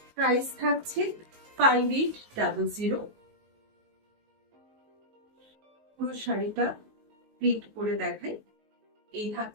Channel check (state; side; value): late; left; 19 ms